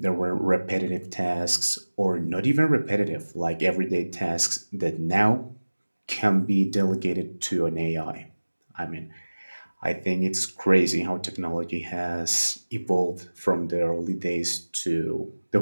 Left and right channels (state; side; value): inverted; both; correlation -1.00